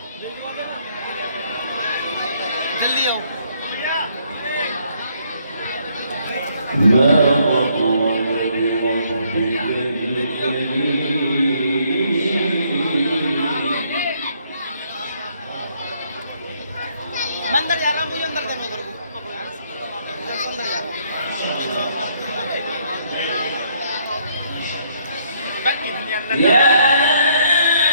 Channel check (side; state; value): both; inverted; correlation -0.69